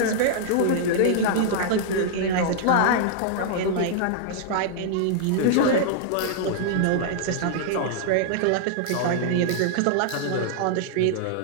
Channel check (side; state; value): both; different; correlation -0.01